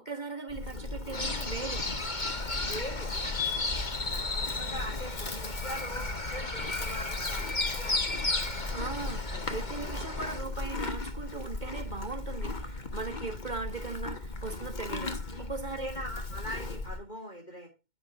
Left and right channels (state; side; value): late; right; 2.2 ms